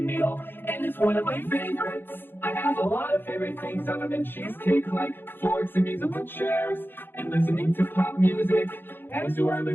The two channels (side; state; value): right; late; 0.099 ms